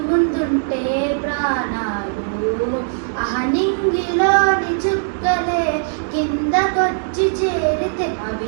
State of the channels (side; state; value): left; silent; digital silence